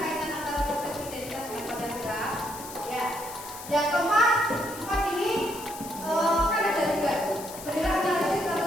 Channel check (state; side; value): noise; left; hiss, 13 dB below the sound